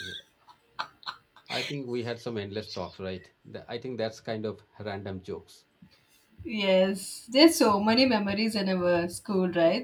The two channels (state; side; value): identical; both; correlation 1.00